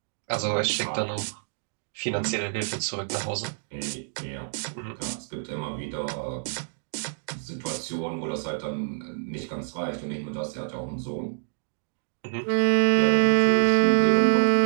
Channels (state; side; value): silent; left; digital silence